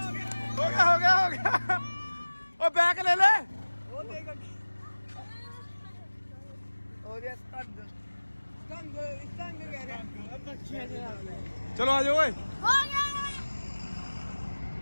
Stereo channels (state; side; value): inverted; both; correlation -1.00